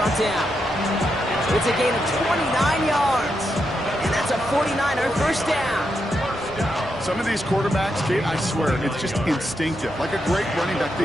down. It's a gain of 29 yards. And that's a 49er 1st down. Some of these quarterbacks, Kate, I swear, it's just instinctive. Like a great running back,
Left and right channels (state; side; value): normal; both; correlation 0.83